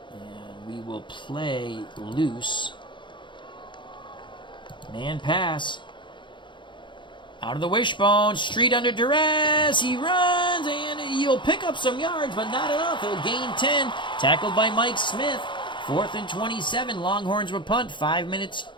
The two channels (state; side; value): late; right; 0.23 ms